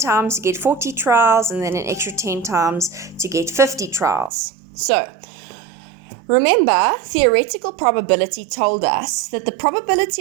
to get 40 trials, and then an extra 10 times to get 50 trials. So remember, theoretical probability told us that the probability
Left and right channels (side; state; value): left; drops out; at 4.3 s